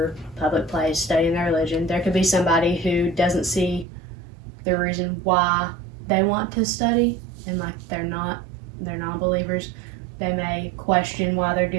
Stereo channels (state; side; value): drops out; left; at 3.9 s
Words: public place studying their religion. There could be somebody who doesn't see the reason why they want to study, and they're non-believers. They may question why they're